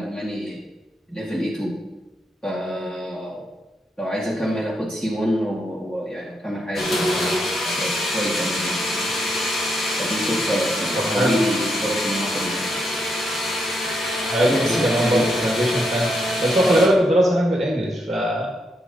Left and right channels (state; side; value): normal; both; correlation 0.80